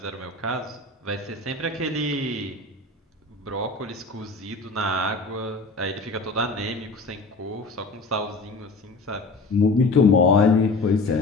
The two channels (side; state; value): right; quieter; 3.3 dB